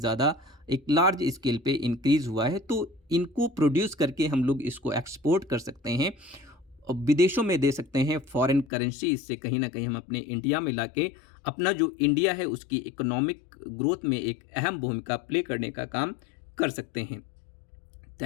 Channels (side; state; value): right; drops out; at 8.7 s